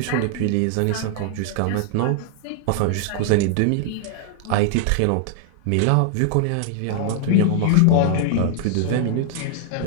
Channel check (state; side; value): different; both; correlation 0.00